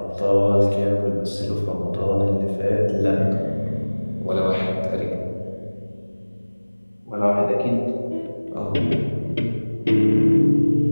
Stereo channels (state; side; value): inverted; both; correlation -1.00